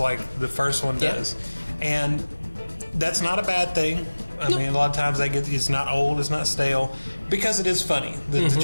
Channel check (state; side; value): inverted; both; correlation -1.00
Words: the first one does. And that's not a bad thing. I mean, a lot of times it's not old, it's not stale, because it is funny. The